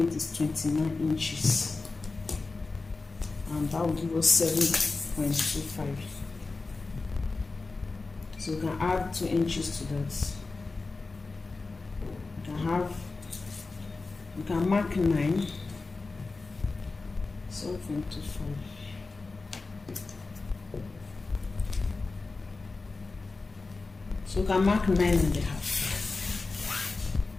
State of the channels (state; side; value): quieter; right; 3.8 dB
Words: with is 29 inches, and that will give us 7.25. So you can add 2 inches to that. You can mark 9, 7.25. So you can mark 9.5.